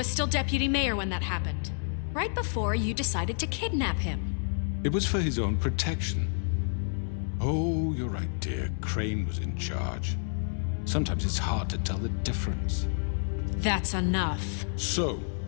still deputy mayor when that happened. Right before you decided to kidnap him. It was for his own protection. Oh, you're right, dear. Crane was in charge. Sometimes it's hard to tell the difference. That's enough. So,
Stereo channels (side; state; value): right; silent; digital silence